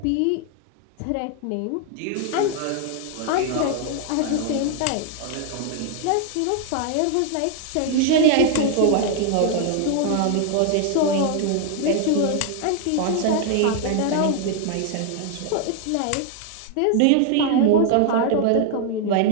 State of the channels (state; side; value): different; both; correlation 0.00